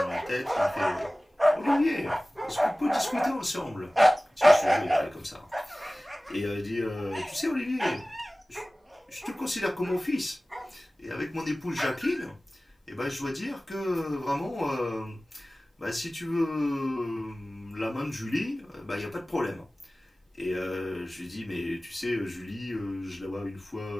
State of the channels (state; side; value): normal; both; correlation 0.98